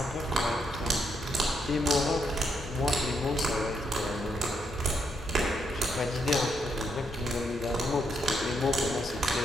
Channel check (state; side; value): normal; both; correlation 0.77